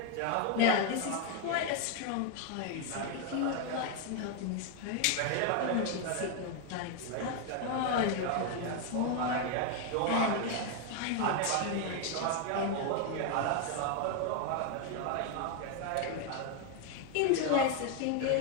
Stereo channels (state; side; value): different; both; correlation 0.01